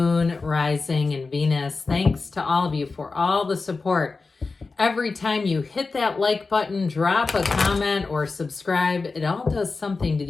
Rising, and Venus. Thanks to all of you for all the support. Every time you hit that like button, drop a comment, or subscribe, it all does something to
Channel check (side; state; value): right; quieter; 4.1 dB